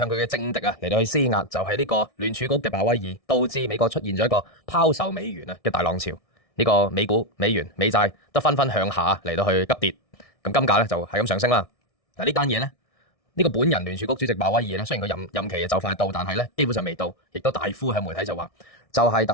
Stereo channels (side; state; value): right; late; 1.6 ms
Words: 佢嘅政敵嚟到去施壓，就係呢個聯儲局嘅鮑威爾，導致美國出現咗一個拋售美元嘅大浪潮。呢個美股、美元、美債都紛紛向下嚟到去急跌，咁金價咧就係咁上升啦。嗱，呢單嘢咧，呢個本人聯儲局主席鮑威爾咧，雖然佢任期就快到，但係咧基本上未到，亦都大呼向媒體就話，就係